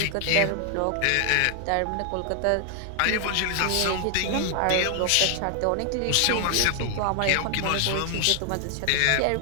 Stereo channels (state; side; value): different; both; correlation 0.00